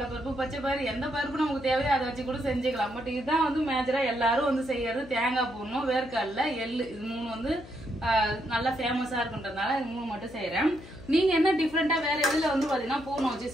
பருப்பு, பச்சை பயிறு, எந்த பருப்பு நமக்கு தேவையோ அதை வச்சு கூட செஞ்சுக்கலாம். பட் இதுதான் வந்து மேஜரா எல்லாரும் வந்து செய்யறது. தேங்காய் பூர்ணம், வேர்க்கடலை, எள்ளு, இது 3 வந்து நல்லா ஃபேமஸா இருக்குன்றதுனால இது 3 மட்டும் செய்யறேன். நீங்க என்ன டிஃபரெண்டா வேற எதுல வந்து பாத்தீங்கன்னா பூர்ணம் வச்சு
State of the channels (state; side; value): noise; left; hum, 17 dB below the sound